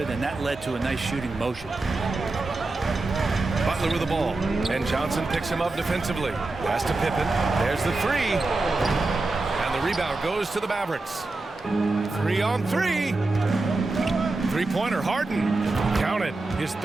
and that led to a nice shooting motion. Butler with the ball, and Johnson picks him up defensively. Pass to Pippen. There's the 3. And the rebound goes to the Mavericks. 3 on 3. Three-pointer, Harden. Counted. His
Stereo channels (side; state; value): left; quieter; 3.2 dB